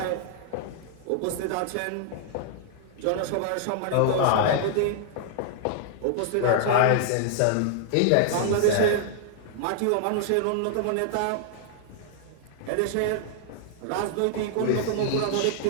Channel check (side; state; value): both; different; correlation -0.01